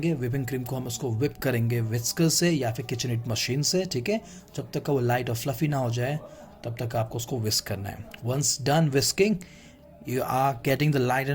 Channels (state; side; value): identical; both; correlation 1.00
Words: whipping cream को हम उसको whip करेंगे whisker से या फिर KitchenAid मशीन से, ठीक है. जब तक का वो लाइट और फ्लफी ना हो जाए तब तक आपको उसको whisk करना है. Once done whisking, you are getting the light